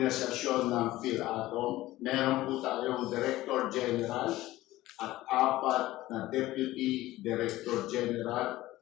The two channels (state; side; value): quieter; right; 16.8 dB